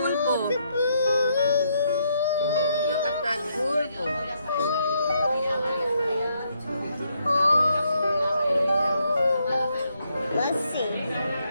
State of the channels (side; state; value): both; inverted; correlation -0.75